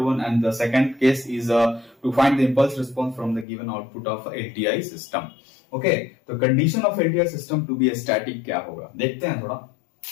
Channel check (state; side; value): drops out; right; at 3.5 s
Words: one and the second case is to find the impulse response from the given output of LTI system. Okay, तो condition of LTI system to be static क्या होगा, देखते हैं। थोड़ा